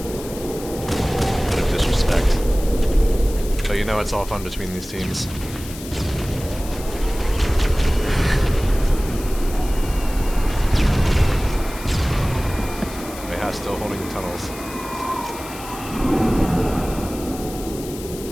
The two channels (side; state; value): left; noise; hiss, 14 dB below the sound